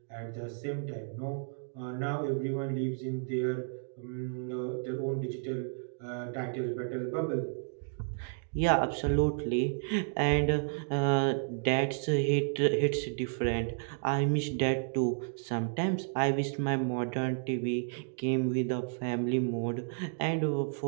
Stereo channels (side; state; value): left; silent; digital silence